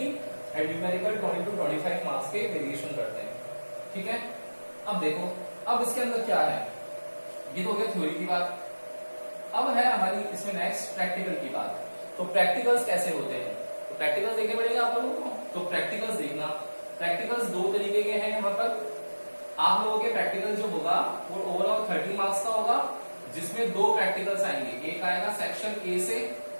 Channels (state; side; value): inverted; both; correlation -1.00